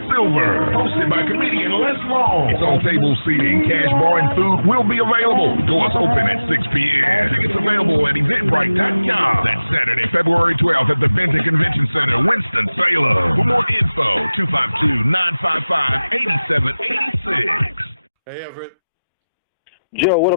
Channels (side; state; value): both; inverted; correlation -0.97